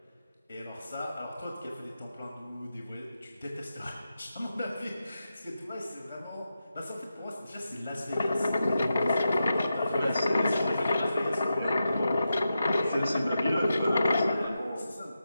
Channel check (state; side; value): inverted; both; correlation -0.89